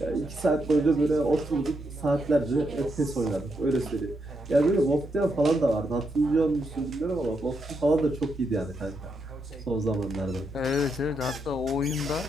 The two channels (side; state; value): both; normal; correlation 0.81